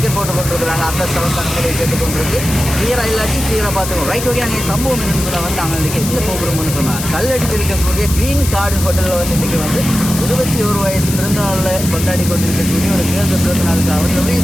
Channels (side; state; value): left; noise; hiss, 7 dB below the sound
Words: போட்டு கொண்டிருக்கிறாங்க. அந்த சவத்தானங்களை கேட்டுக்கொண்டிருக்கு. கிளியராக இல்லாட்டி கிளியராக பார்த்துக்கோம். ரைட் ஓகே, நாங்கள் சம்பவம் என்னன்னு சொன்னால் வந்து நாங்கள் இன்றைக்கி எங்கே போகிறோம்னு சொன்னால் கல்லடியில் இருக்கக்கூடிய க்ரீன் கார்டு ஹோட்டலில் வந்து இன்றைக்கி வந்து 21 வயசு பிறந்தநாளில் கொண்டாடி கொண்டிருக்கக்கூடிய ஒரு தேர்ந்த பிறந்த நாளுக்கு அவர் நிறைய